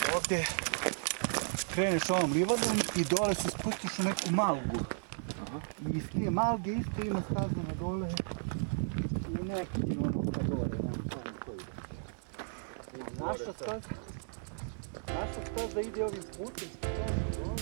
te kreneš ovom livadom i dole se spustiš u neku malgu. I iz te malge isto ima staza na dole i neki ono ka dole, nemam pojma koji ide. Naša staza ide ovim putem, što je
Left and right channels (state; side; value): silent; left; digital silence